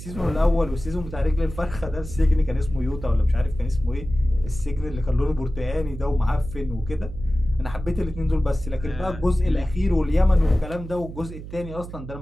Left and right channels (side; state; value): right; noise; hum, 11 dB below the sound